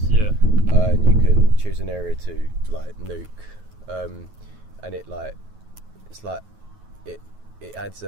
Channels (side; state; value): left; late; 9.3 ms